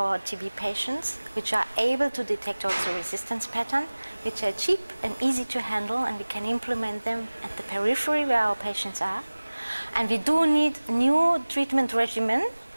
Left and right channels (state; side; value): inverted; both; correlation -1.00